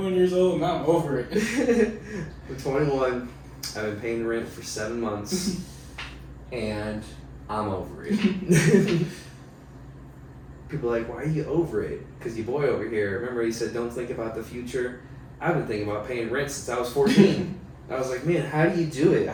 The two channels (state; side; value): identical; both; correlation 1.00